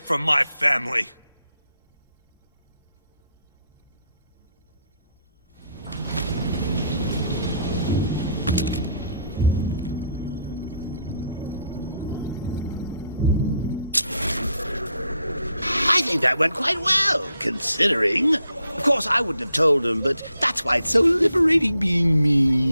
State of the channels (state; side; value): inverted; both; correlation -0.74